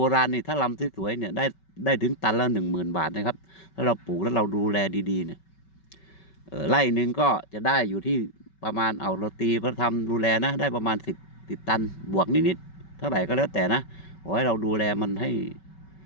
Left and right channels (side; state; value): right; late; 5.3 ms